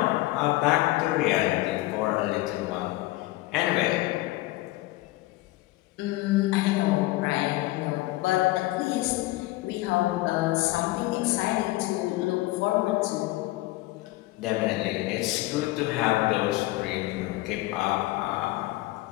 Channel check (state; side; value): quieter; right; 19.0 dB